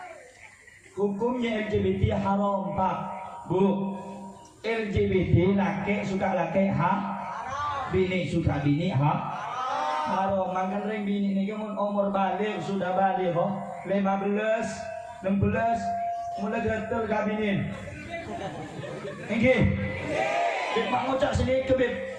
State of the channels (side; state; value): both; identical; correlation 1.00